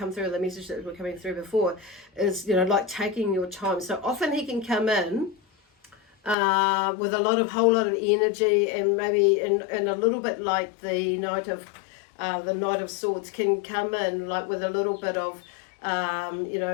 through, the message that were coming through before is, you know, like taking your time. So often he can come in with a whole lot of energy, and maybe in a little bit like the Knight of Swords can come in like with a little bit of you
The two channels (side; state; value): right; drops out; at 6.4 s